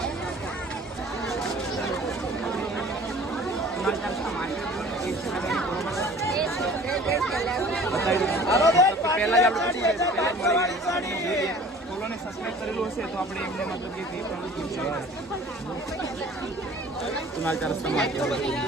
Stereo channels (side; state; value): both; normal; correlation 0.47